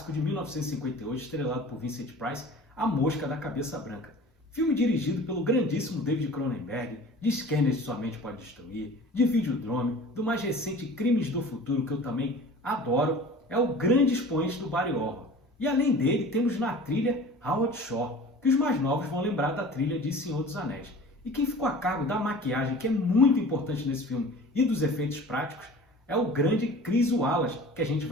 de 1958 estrelado por Vincent Price, A Mosca da Cabeça Branca. Filme dirigido pelo grandíssimo David Cronenberg, de Scanners de Sua Mente Pode Destruir, de Videodrome, do mais recente Crimes do Futuro, que eu também adoro, é o grande expoente do body horror. E além dele, temos na trilha Howard Shore, que os mais novos vão lembrar da trilha de Senhor dos Anéis. E quem ficou a cargo da maquiagem, que é muito importante nesse filme, e dos efeitos práticos, é o grande Chris Wallace, que a gente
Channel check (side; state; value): both; normal; correlation 0.42